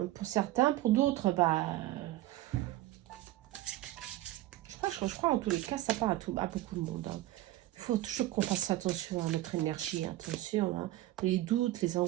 pour certains. Pour d'autres, je crois en tous les cas, ça part à beaucoup de monde, hein. Il faut toujours qu'on fasse attention à notre énergie. Attention, hein. Les doutes, les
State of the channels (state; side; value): quieter; left; 15.9 dB